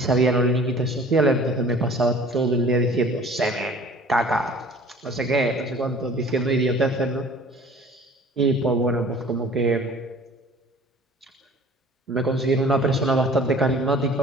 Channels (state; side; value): normal; both; correlation 0.48